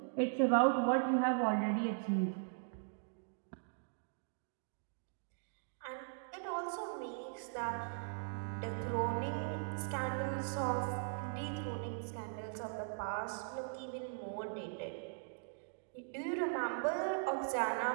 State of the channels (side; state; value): left; silent; digital silence